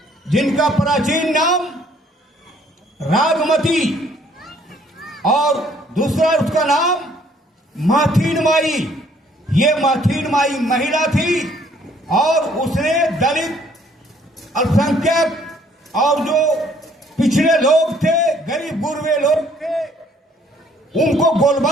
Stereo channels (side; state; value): both; normal; correlation 0.62